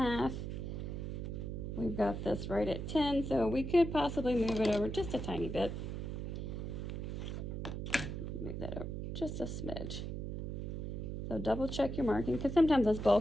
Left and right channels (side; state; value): right; noise; hum, 4 dB below the sound